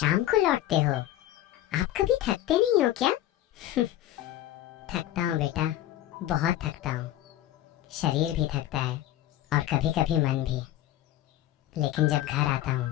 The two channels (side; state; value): right; quieter; 13.4 dB